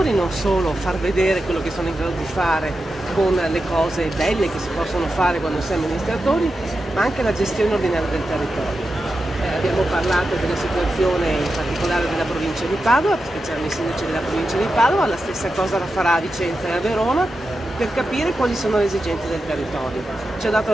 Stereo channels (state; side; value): normal; both; correlation 0.90